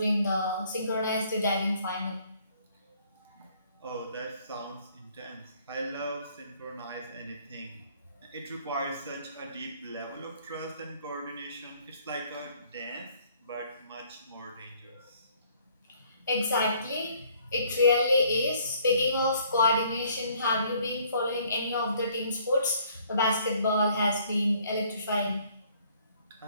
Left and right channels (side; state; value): both; inverted; correlation -0.61